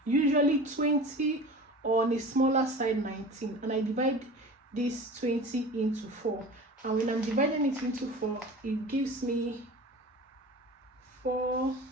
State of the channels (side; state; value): both; normal; correlation 0.37